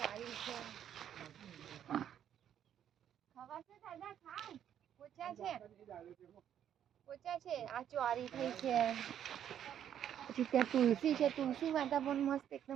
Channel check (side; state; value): left; quieter; 9.8 dB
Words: છે, ખવાશે દાદા, ખાવ. પોચા છે, પોચા છે. આ ચોળી થઈ છે, પછી ત્યાં તુલસી છે, તુલસી માતા પણ મસ્ત